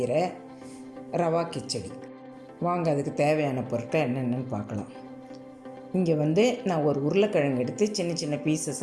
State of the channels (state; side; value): identical; both; correlation 1.00